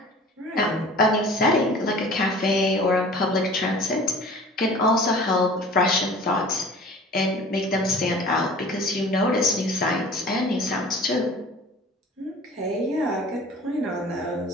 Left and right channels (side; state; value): both; normal; correlation 0.44